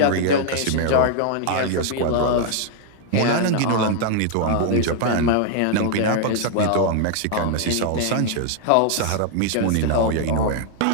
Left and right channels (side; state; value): both; different; correlation 0.00